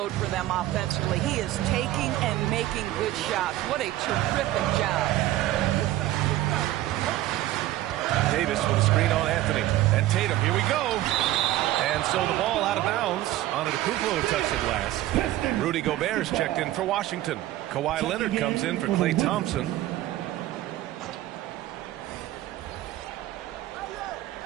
for them offensively. He is taking and making good shots. What a terrific job. Davis with a screen on Anthony. And Tatum, here we go. And so the ball out of bounds. Antetokounmpo touched it last. Rudy Gobert's checked in for Washington. Kawhi Leonard comes in for Klay Thompson.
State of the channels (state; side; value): quieter; left; 15.0 dB